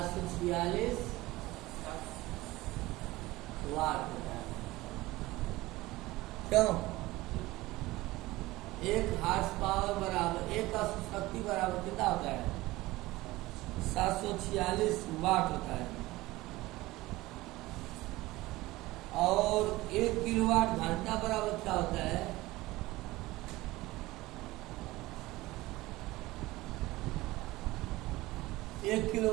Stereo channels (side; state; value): left; quieter; 19.0 dB